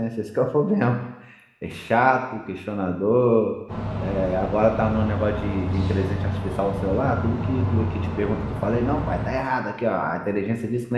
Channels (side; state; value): both; identical; correlation 1.00